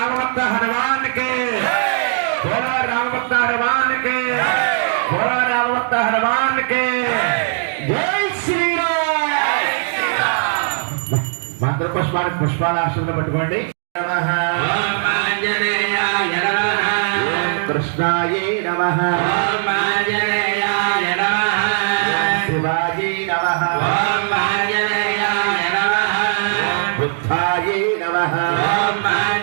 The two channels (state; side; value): silent; left; digital silence